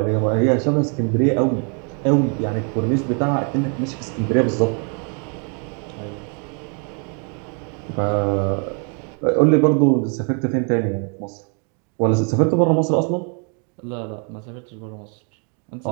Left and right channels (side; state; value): left; quieter; 38.5 dB